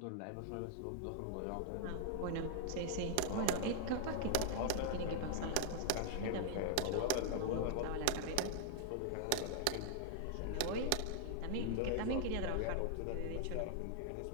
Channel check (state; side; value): different; both; correlation 0.00